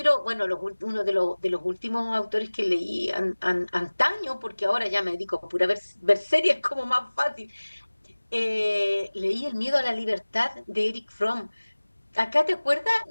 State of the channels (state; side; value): inverted; both; correlation -1.00